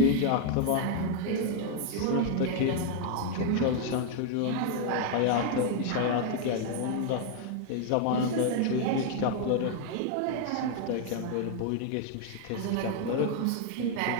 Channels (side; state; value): both; different; correlation 0.00